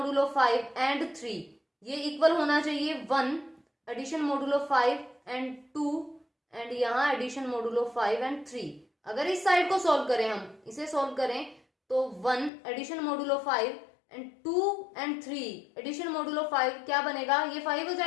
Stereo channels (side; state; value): right; drops out; at 12.5 s